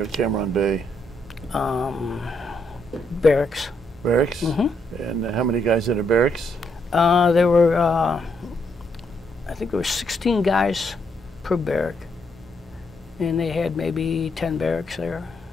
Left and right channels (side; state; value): both; normal; correlation 0.75